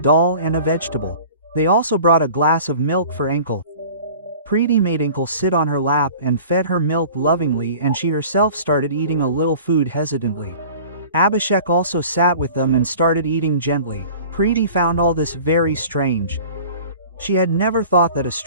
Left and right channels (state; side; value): inverted; both; correlation -0.44